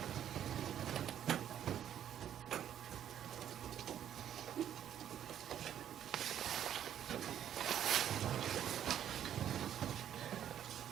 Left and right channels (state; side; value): quieter; left; 10.2 dB